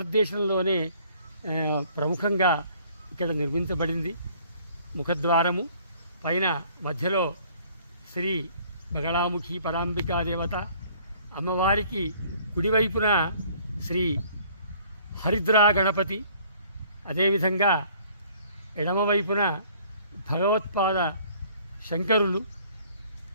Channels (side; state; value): both; inverted; correlation -0.57